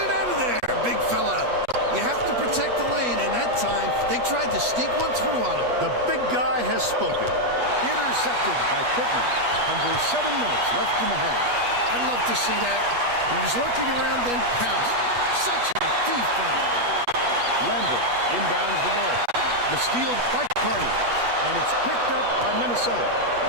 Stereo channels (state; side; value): late; left; 8.3 ms